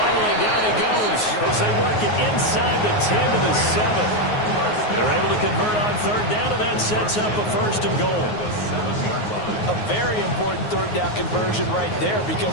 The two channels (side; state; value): right; late; 9.5 ms